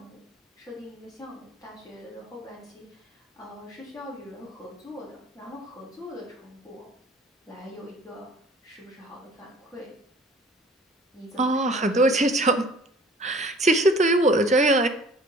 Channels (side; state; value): both; normal; correlation 0.51